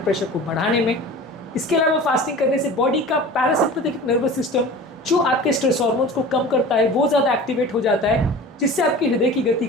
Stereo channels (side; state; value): both; normal; correlation 0.38